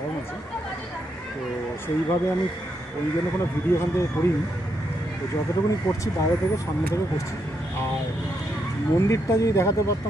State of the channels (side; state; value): both; normal; correlation 0.80